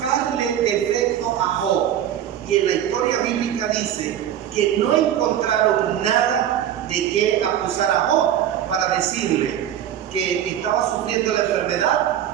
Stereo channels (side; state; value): left; quieter; 10.6 dB